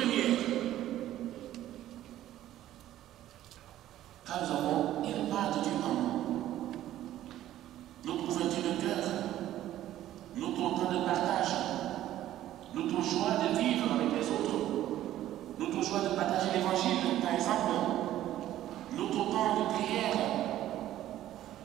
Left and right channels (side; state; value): left; quieter; 13.2 dB